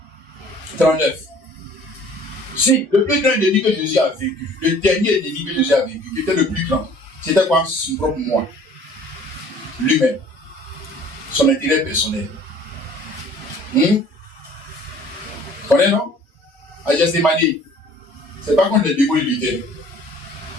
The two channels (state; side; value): normal; both; correlation 0.52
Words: 39. Si, le plus grand ennemi que Jésus a vécu, le dernier ennemi que Jésus a vécu, qui était le plus grand, c'était quoi? Son propre moi. Lui-même. Son intérêt personnel. Vous connaissez, non? À Gethsémane, c'est pas contre les démons il luttait.